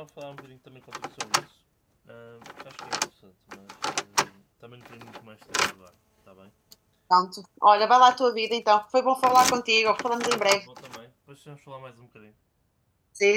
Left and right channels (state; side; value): identical; both; correlation 1.00